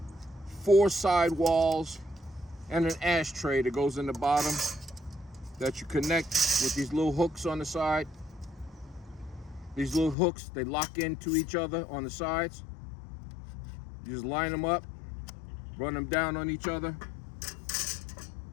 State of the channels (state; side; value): drops out; right; at 10.2 s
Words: 4 side walls and an ashtray that goes in the bottom that you connect with these little hooks on the side. These little hooks, they lock into each other on the sides. You just line them up, run them down on each other,